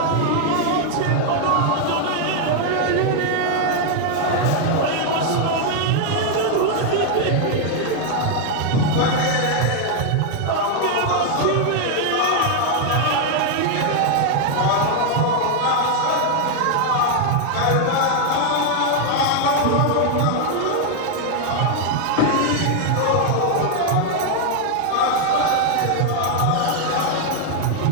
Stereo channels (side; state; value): both; different; correlation 0.00